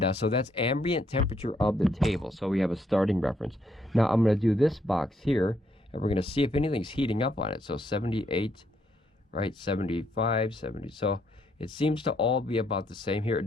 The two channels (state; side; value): normal; both; correlation 0.73